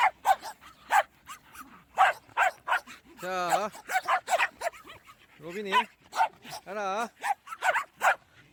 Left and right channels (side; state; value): both; identical; correlation 1.00